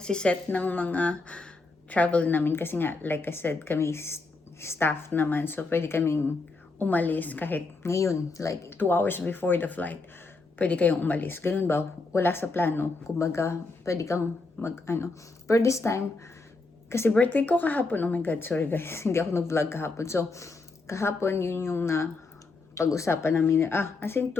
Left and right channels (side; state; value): right; quieter; 3.7 dB